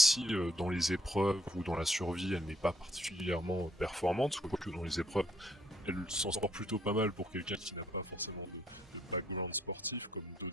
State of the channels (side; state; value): both; normal; correlation 0.68